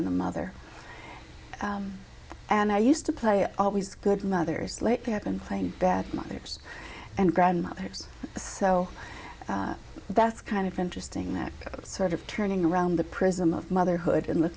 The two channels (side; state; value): both; identical; correlation 1.00